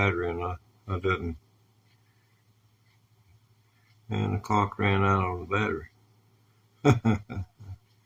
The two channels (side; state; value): both; identical; correlation 1.00